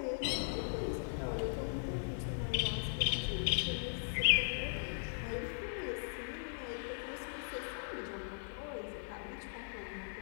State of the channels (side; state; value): right; silent; digital silence